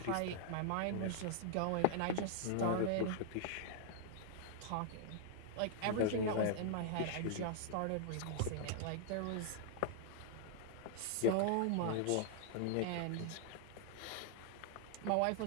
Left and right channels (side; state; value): both; different; correlation -0.01